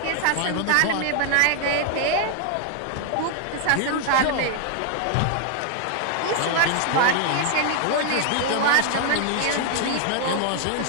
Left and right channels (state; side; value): different; both; correlation 0.00